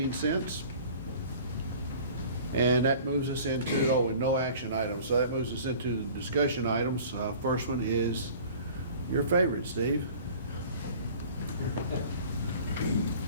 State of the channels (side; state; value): both; inverted; correlation -0.46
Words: And that moves us into, and no action items. So that moves us into the discussion items. First one is your favorite, Steve.